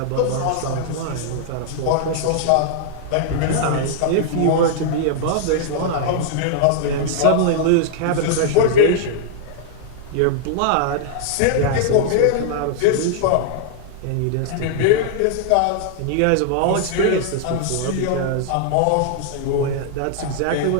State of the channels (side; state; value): both; different; correlation -0.01